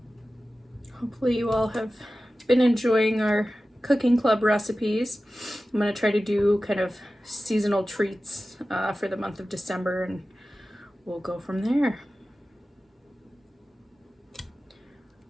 Hopefully you all have been enjoying our cooking club recipes. I'm going to try to do kind of seasonal treats for the month of December, and we'll go from there.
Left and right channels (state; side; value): normal; both; correlation 0.95